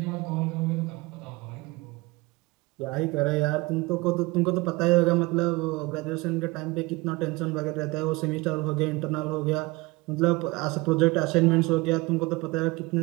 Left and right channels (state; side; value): quieter; left; 23.0 dB